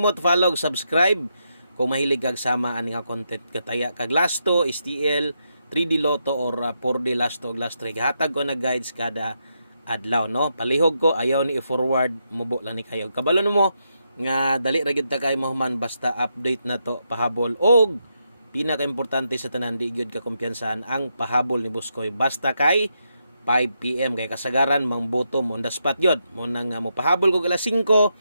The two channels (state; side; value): inverted; both; correlation -0.82